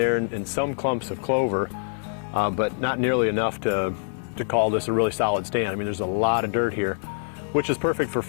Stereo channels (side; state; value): right; silent; 62 dB below the other